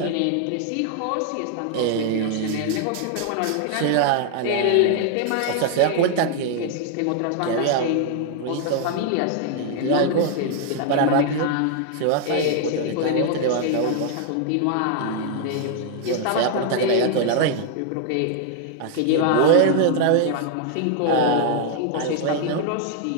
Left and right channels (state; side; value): different; both; correlation 0.00